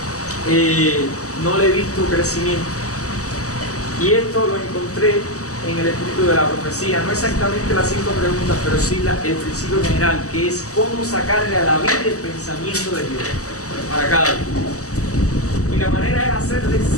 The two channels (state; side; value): late; right; 0.66 ms